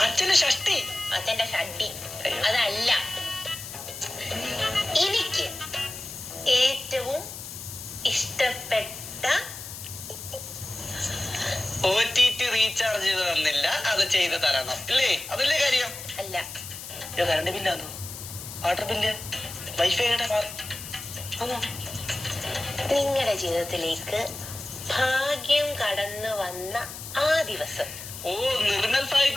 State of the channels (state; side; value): noise; left; hiss, 11 dB below the sound